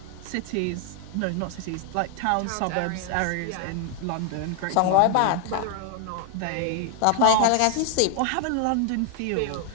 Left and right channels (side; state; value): both; different; correlation 0.01